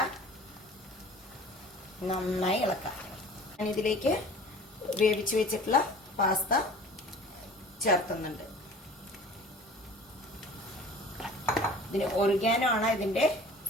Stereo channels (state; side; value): normal; both; correlation 0.44